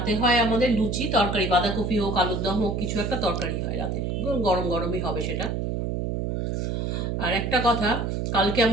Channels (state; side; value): noise; right; hum, 1 dB below the sound